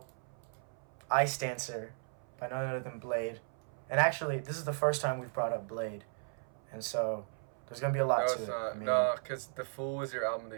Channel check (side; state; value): left; silent; 54 dB below the other